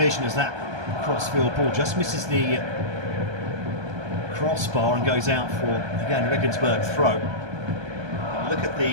as that crossfield ball just misses the crossbar and goes out for, again, Regensburg throw. Look at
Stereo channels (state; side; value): late; left; 1.3 ms